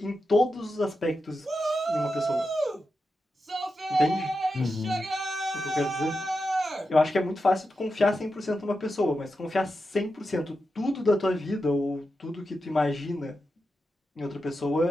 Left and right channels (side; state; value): both; normal; correlation 0.89